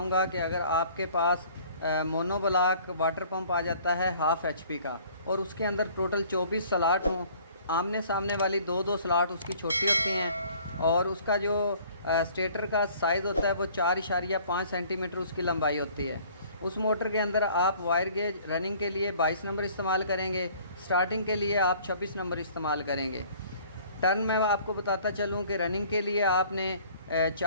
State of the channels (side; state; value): both; inverted; correlation -0.54